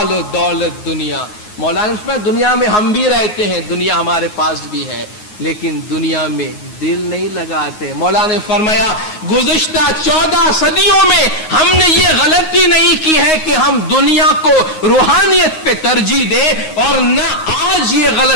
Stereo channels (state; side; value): late; right; 9.5 ms